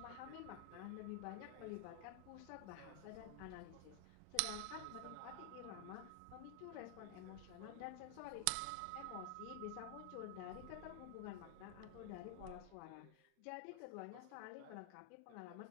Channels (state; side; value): different; both; correlation 0.00